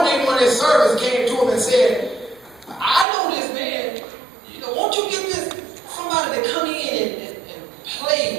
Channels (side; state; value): left; drops out; at 3.1 s